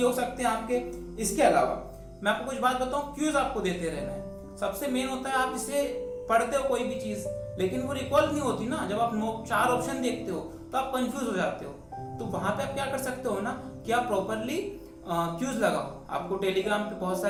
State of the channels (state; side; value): identical; both; correlation 1.00